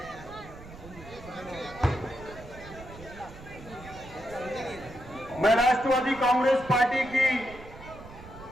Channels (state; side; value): noise; right; rumble, 16 dB below the sound